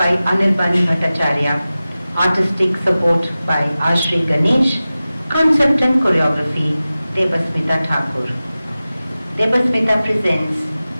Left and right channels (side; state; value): both; inverted; correlation -0.96